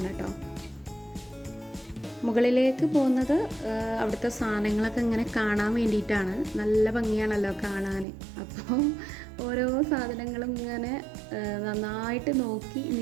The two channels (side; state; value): left; drops out; at 8.1 s